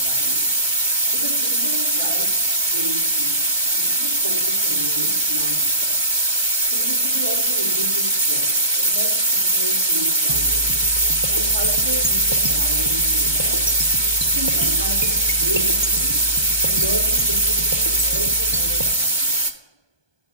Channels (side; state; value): left; late; 1.2 ms